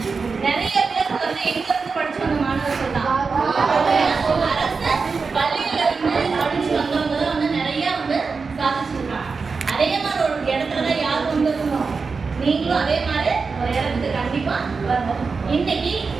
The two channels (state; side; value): quieter; left; 4.8 dB